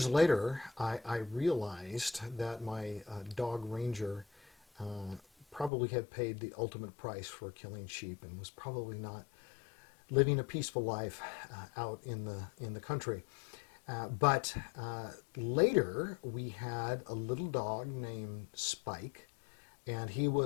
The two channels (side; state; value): right; drops out; at 5.7 s